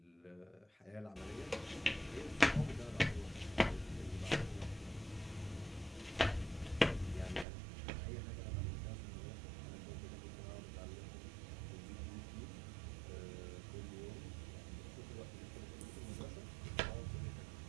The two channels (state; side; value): drops out; left; at 7.5 s